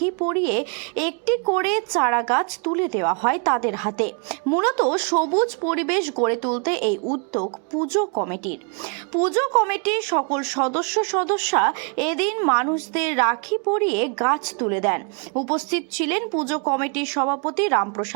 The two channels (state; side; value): quieter; left; 37.5 dB